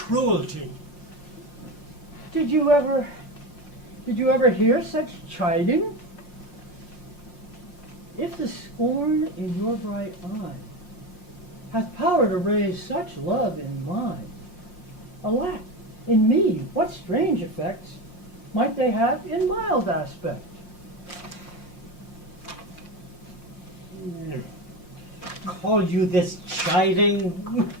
Did you ever hear such chiding? If the scorn in your bright eye hath power to raise such love in mine, alack, in me what strange effects might they have in mild aspect? Call you this chiding?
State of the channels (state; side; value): late; right; 5.6 ms